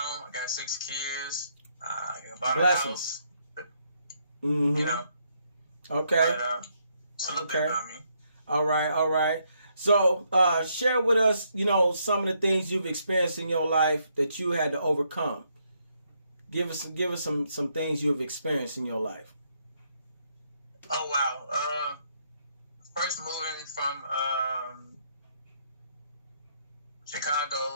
I got 6 kids. I bought a house. Mm-hmm. You know. Okay. But, it's a little bit about me. All right. So, share with us, some of the things you've experienced in your life that you had to overcome. Give us some things you have experienced in your life. Oh wow! First moving from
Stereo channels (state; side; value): inverted; both; correlation -0.74